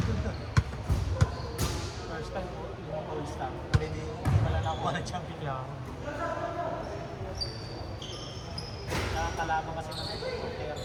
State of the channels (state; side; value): identical; both; correlation 1.00